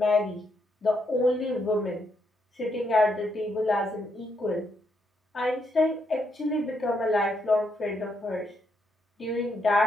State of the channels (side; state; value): both; normal; correlation 0.77